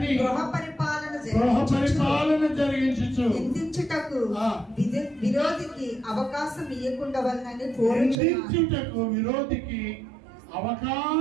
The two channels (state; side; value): drops out; left; at 8.2 s